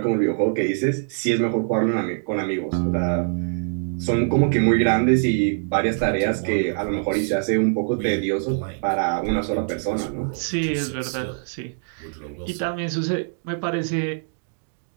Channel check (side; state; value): left; silent; digital silence